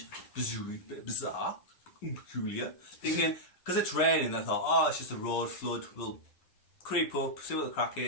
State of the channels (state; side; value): late; right; 11 ms